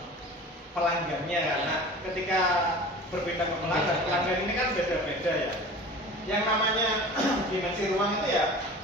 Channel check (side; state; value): both; normal; correlation 0.39